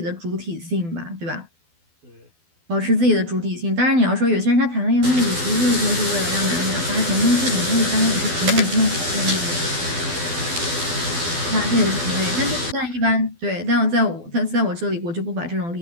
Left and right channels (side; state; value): left; late; 12 ms